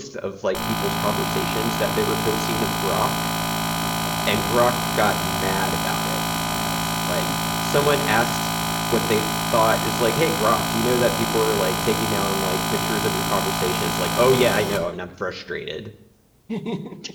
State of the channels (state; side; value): identical; both; correlation 1.00